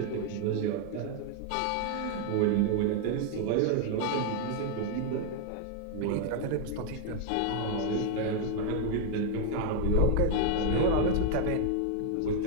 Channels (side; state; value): both; different; correlation 0.00